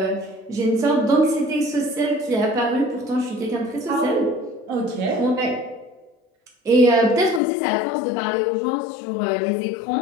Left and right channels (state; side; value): drops out; right; at 7.4 s